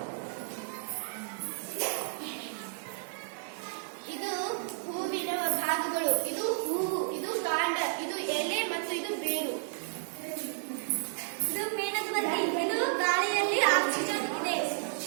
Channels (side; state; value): left; silent; digital silence